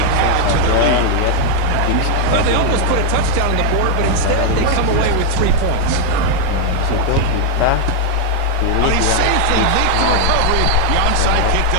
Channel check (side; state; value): both; different; correlation 0.00